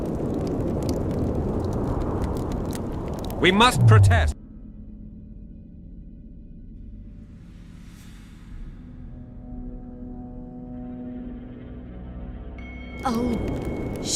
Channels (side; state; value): both; identical; correlation 1.00